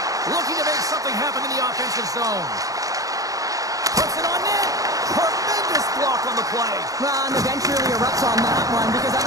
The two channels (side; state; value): left; late; 0.17 ms